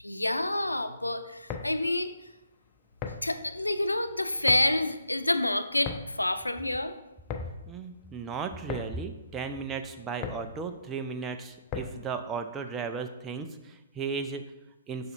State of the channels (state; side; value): inverted; both; correlation -0.71